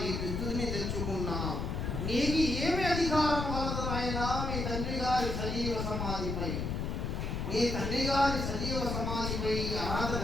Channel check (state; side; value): noise; left; rumble, 2 dB below the sound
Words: ఈ విద్యుత్ని తెచ్చుకున్నావు. నీకు ఏమి అధికారం కలదు నాయనా మీ తండ్రి గారి సజీవ సమాధిపై? మీ తండ్రి గారి సజీవ సమాధిపై అర్హత